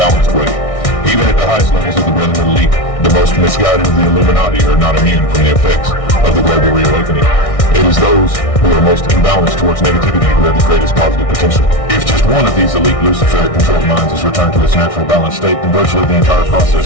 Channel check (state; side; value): late; right; 1.6 ms